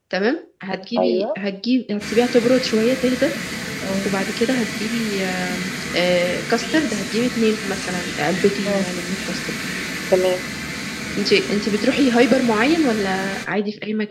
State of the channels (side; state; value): both; identical; correlation 1.00